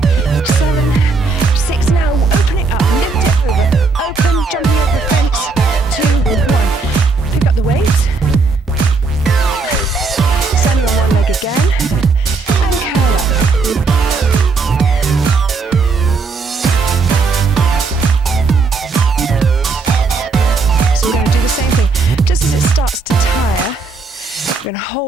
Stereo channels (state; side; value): quieter; left; 4.2 dB